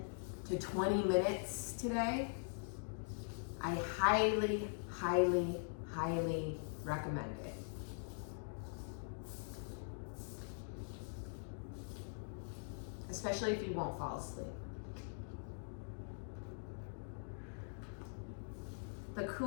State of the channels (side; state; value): right; silent; digital silence